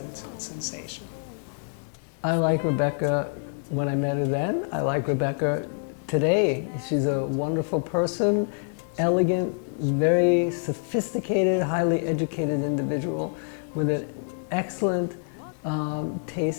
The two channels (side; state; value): right; silent; digital silence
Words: sensation. I like Rebecca when I met her then. I like Rebecca today. She's a wonderful person, elegant, very sophisticated, highly educated individual with an excellent